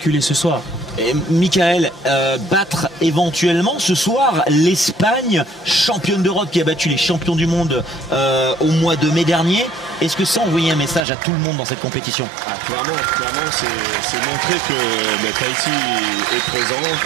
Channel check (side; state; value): left; drops out; at 11.0 s